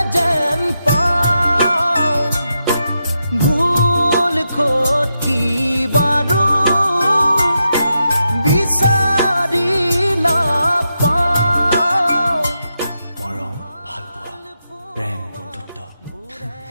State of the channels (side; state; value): both; inverted; correlation -0.85